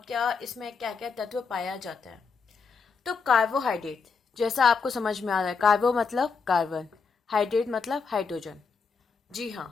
क्या इसमें क्या क्या तत्व पाया जाता है। तो कार्बोहाइड्रेट, जैसा आपको समझ में आ रहा है, कार्बो मतलब कार्बन, हाइड्रेट मतलब हाइड्रोजन। जी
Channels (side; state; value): right; quieter; 5.2 dB